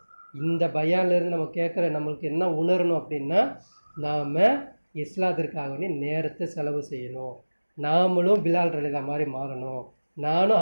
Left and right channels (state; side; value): inverted; both; correlation -1.00